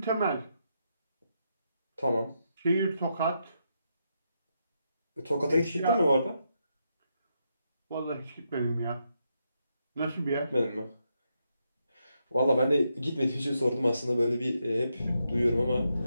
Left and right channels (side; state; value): both; inverted; correlation -0.82